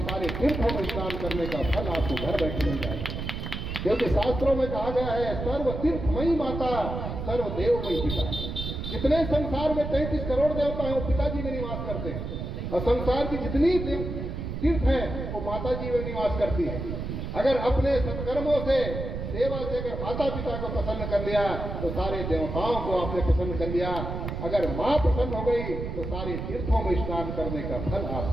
सारे तीर्थों में स्नान करने का फल आपको घर बैठे मिल जाएगा। क्योंकि शास्त्रों में कहा गया है, सर्व तीर्थमयी माता सर्व देवमयी पिता। जितने संसार में 33 करोड़ देवता हैं वो पिताजी में निवास करते हैं, और संसार की जितनी तीर्थ है वो माता जी में निवास करती है। अगर अपने सत्कर्मों से, सेवा से अगर माता पिता को प्रसन्न कर लिया तो सारे देवताओं को आपने प्रसन्न कर लिया। अगर माँ प्रसन्न हो गई तो सारे तीर्थों में स्नान करने का फल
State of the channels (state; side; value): noise; right; rumble, 5 dB below the sound